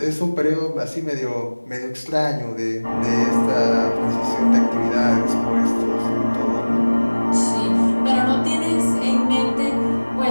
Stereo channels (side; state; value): both; inverted; correlation -1.00